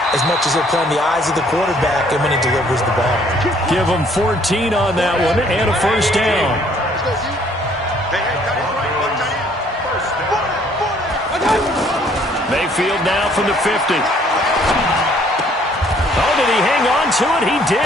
as much as they're playing the eyes of the quarterback and when he delivers the ball. Give him 14 on that one and a first down. Mayfield now from the 50. Oh, did he hang on to it? He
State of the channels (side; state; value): both; normal; correlation 0.62